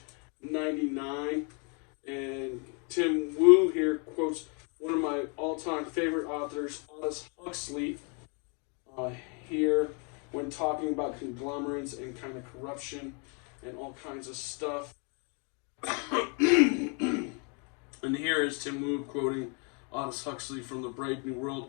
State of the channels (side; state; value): right; quieter; 36.2 dB